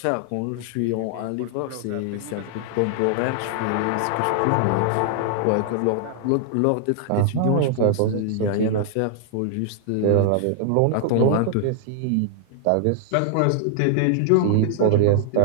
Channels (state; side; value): different; both; correlation 0.00